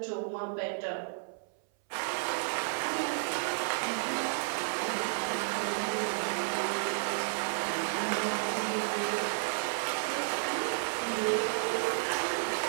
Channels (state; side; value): silent; left; 56 dB below the other